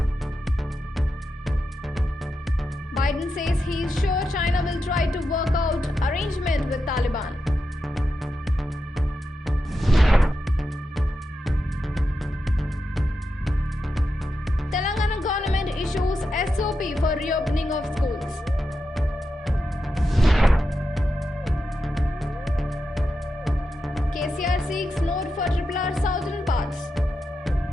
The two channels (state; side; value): normal; both; correlation 0.88